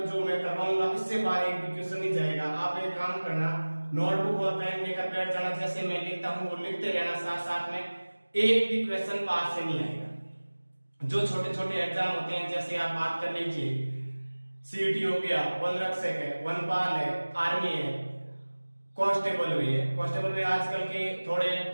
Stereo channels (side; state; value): both; inverted; correlation -1.00